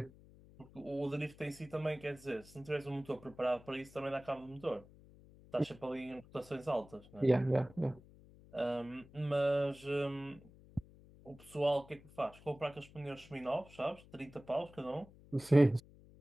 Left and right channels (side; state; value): left; noise; hum, 22 dB below the sound